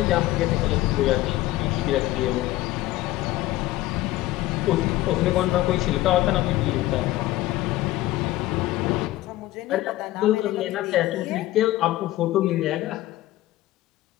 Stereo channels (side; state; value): right; quieter; 16.5 dB